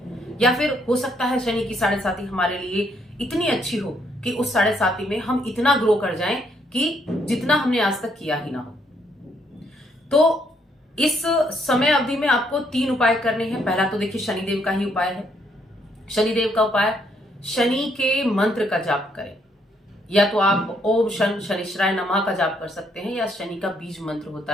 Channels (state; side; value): normal; both; correlation 0.71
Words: या फिर हो सकता है शनि की साढ़े साती हमारे लिए इतनी अच्छी हो कि उस साढ़े साती में हम इतना ग्रो कर जाएं कि जितना हमने आज तक किया ही ना हो। तो इस समय अवधि में आपको 3 उपाय करने हैं। पहला तो देखिए शनिदेव का ही उपाय है। शनिदेव का उपाय, शनि के मंत्र का जाप करें, या तो आप ओम शन शनिश्चराय नमः का जाप कर सकते हैं, या शनि का बीज मंत्र